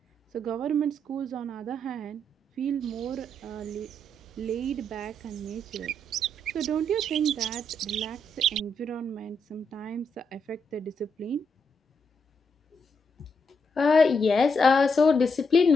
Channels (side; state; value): both; normal; correlation 0.78